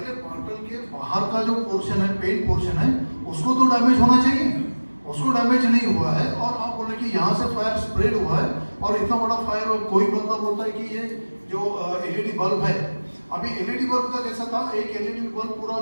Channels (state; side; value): inverted; both; correlation -1.00